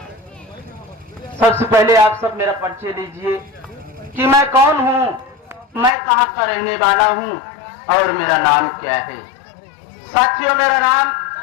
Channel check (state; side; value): drops out; right; at 5.9 s